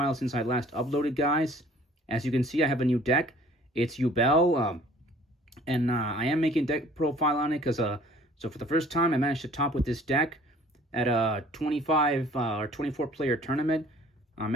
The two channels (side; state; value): both; normal; correlation 0.53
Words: since I last uploaded, guys. As you can see, I have a new deck. It's Yubel, and I am making deck profile on it because so for the first time I managed to top with this deck at a 25 or 24 player tournament. I